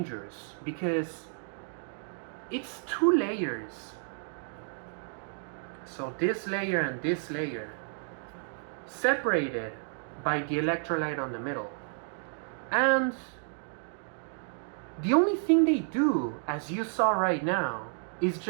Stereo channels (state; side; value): silent; left; 57 dB below the other